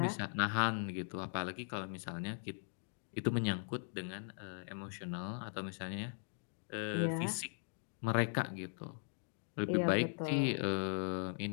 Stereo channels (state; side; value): silent; right; digital silence